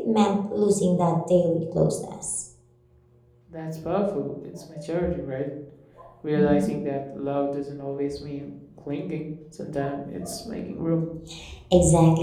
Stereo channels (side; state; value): both; identical; correlation 1.00